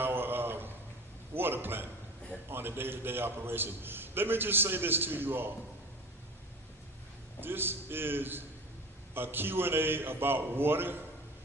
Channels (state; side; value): normal; both; correlation 0.35